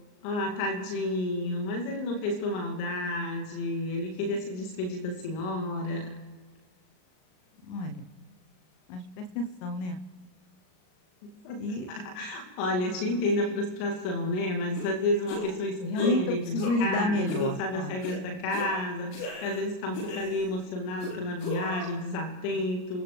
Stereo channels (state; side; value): late; right; 38 ms